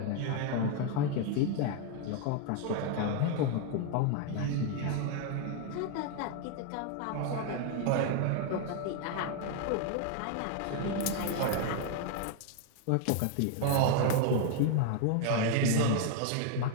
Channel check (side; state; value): both; different; correlation 0.00